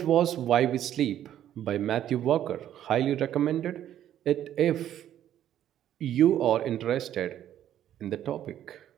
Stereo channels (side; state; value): left; quieter; 11.2 dB